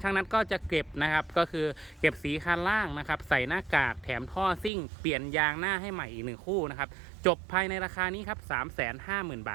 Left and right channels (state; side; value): drops out; left; at 4.7 s